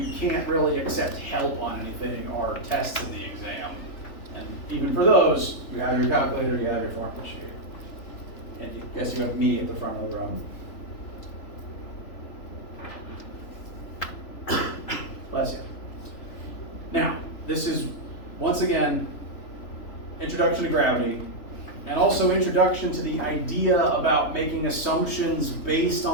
can't really accept help on anything are tests in the exam. And even for those, you have your calculator, you have your formula sheet. And yes, you have me at the front of the room. Bless you. Now, this is, once again, introduction to gravity, and also introduction to the idea about making assumptions based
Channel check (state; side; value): late; right; 3.4 ms